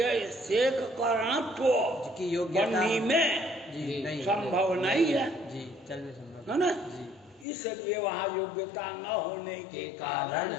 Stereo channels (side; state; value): right; drops out; at 7.5 s